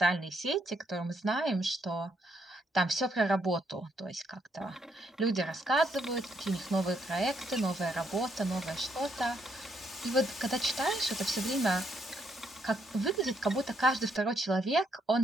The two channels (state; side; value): normal; both; correlation 0.74